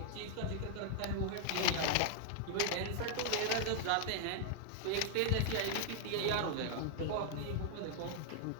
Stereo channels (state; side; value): different; both; correlation -0.01